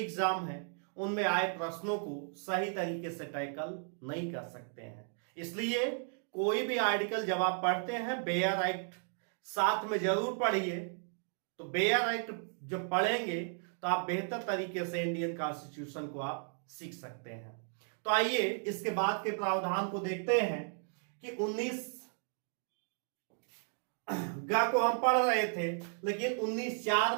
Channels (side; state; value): left; silent; 54 dB below the other